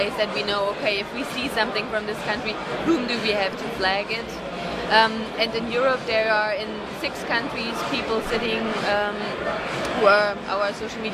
that we know, okay, if we see something from this country, whom do we have to flag it? And in Europe there are in 6 countries people sitting who are our social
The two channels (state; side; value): identical; both; correlation 1.00